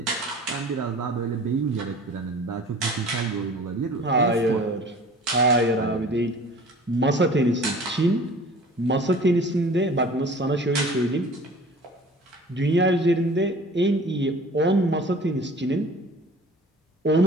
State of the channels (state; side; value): normal; both; correlation 0.45